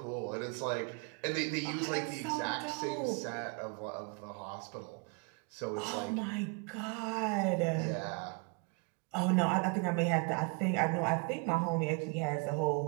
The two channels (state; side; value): quieter; left; 32.4 dB